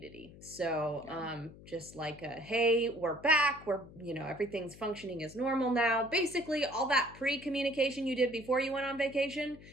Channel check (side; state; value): left; noise; hum, 19 dB below the sound